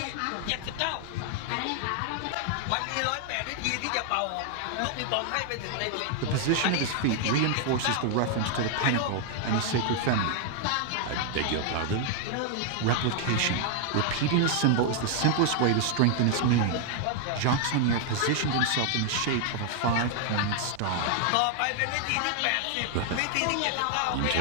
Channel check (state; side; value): different; both; correlation 0.00